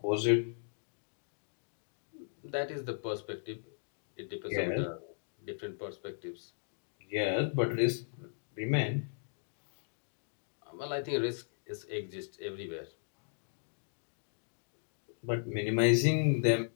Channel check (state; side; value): silent; right; digital silence